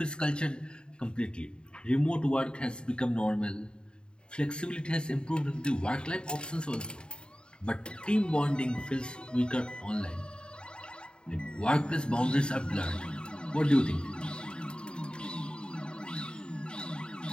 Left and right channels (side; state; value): right; late; 0.051 ms